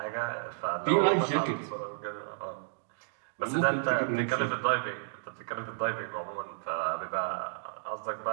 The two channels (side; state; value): left; silent; digital silence